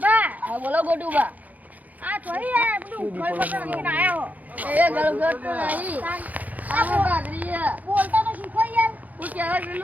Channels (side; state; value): left; late; 0.079 ms